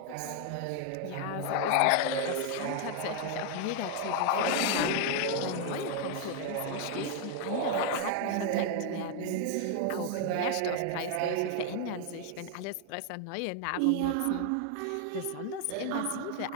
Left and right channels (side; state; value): both; different; correlation 0.01